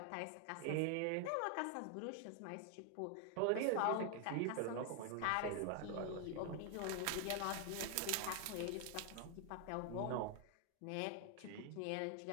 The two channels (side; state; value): both; different; correlation 0.00